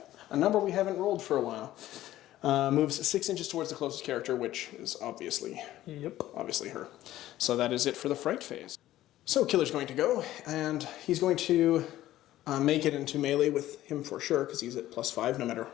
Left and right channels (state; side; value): quieter; right; 14.4 dB